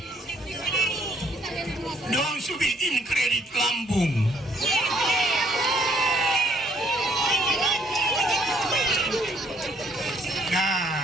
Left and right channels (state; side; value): normal; both; correlation 0.66